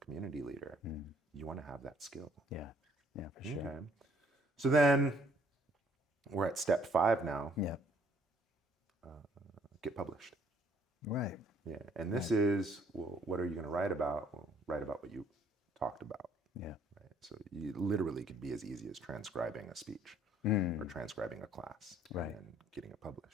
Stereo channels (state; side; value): normal; both; correlation 0.63